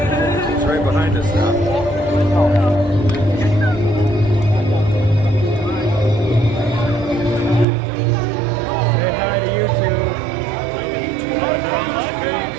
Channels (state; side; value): drops out; left; at 7.7 s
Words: right behind us now. Say hi to YouTube.